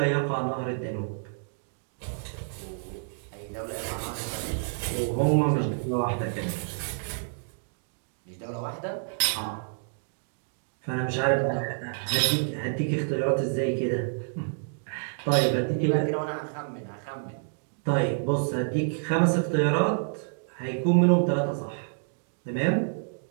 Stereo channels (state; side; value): silent; left; digital silence